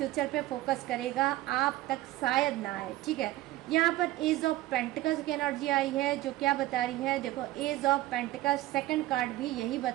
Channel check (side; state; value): left; quieter; 16.3 dB